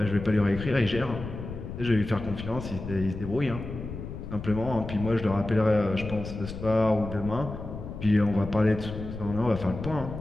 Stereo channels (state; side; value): noise; left; rumble, 9 dB below the sound